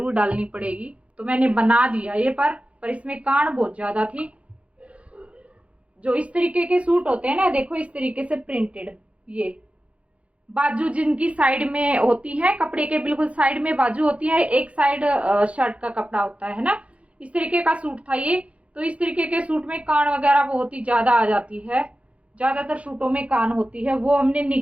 डालनी पड़ेगी। तो मैंने बना दिया ये, पर इसमें कान बहुत ज्यादा थी। जो इस तरीके के सूट होते हैं ना, देखो इस तरीके से प्रिंटेड, ये बाजू जिनकी साइड में होती है, कपड़े के बिल्कुल साइड में बाजू होती है, एक साइड शर्ट का कपड़ा होता है ना, इस तरीके का सूट था ये। तो इस तरीके के सूट में कान वगैरह बहुत ही ज्यादा आ जाती है, ज्यादातर सूटों में कान होती है, वो हमने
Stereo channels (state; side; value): late; left; 0.063 ms